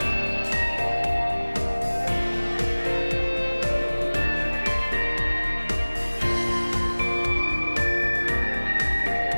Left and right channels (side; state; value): both; inverted; correlation -1.00